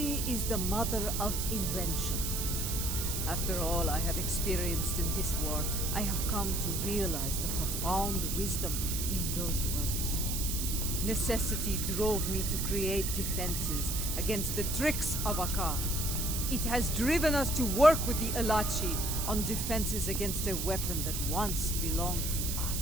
is the mother of invention. After all I have experienced in this war, I have come to realize the profound wisdom in those words. Necessity drove me to create defenses against the tricks of Akar. It has driven us to work with the Alachi on defenses against a weapon that once belonged to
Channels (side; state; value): right; noise; hiss, 2 dB below the sound